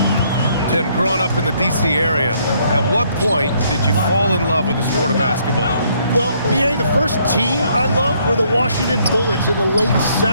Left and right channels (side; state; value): both; inverted; correlation -0.68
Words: Tim, growing up in the D.C. area, at what point did you fall in love with the sport of basketball? Well, BA, the first team I loved were the Washington Bullets in the late